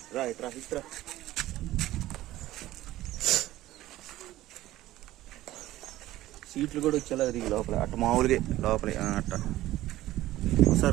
రా ఇట్రా. సీట్లు కూడా వచ్చేలా తిరిగి లోపల, అట్ట మామూలుగా లోపల అట్ట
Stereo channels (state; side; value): quieter; left; 15.5 dB